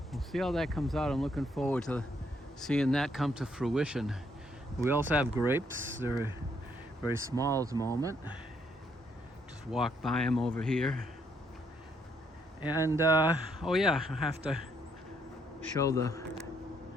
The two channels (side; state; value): both; normal; correlation 0.72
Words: see how that comes out. I'm looking forward to seeing that come to fruition. We also have grapes. They're very small at the moment. Just walk by them over here. And oh yeah, I have to show the